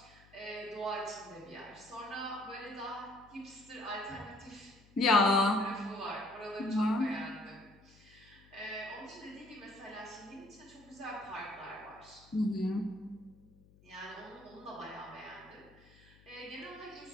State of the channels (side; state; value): left; noise; hum, 25 dB below the sound